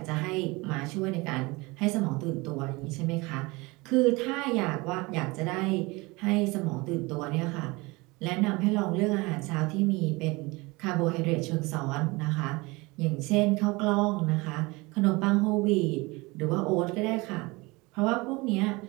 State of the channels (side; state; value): left; quieter; 24.1 dB